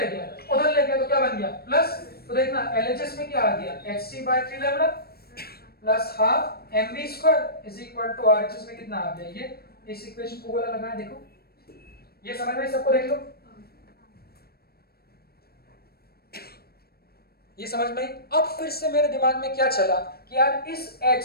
गया, उधर ले गया, तो क्या बन गया, प्लस। तो देखना LHS में क्या आ गया, hc by 3 lambda plus half mv square is equal to RHS में कितना आ गया, ये। इस इक्वेशन को वाला लगाया, देखो ये समझ में, सबको देख लो, ये समझ में। अब फिर से मेरे दिमाग में क्या चला कि यार इस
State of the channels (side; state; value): right; late; 0.45 ms